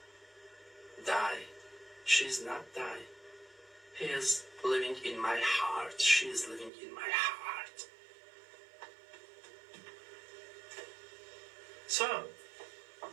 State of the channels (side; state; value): left; drops out; at 6.7 s